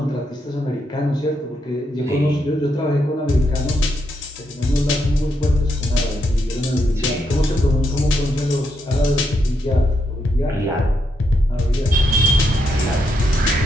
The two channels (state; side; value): normal; both; correlation 0.80